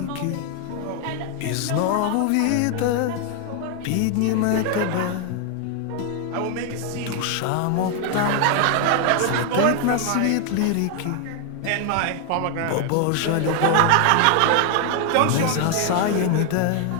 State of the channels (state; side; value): different; both; correlation 0.00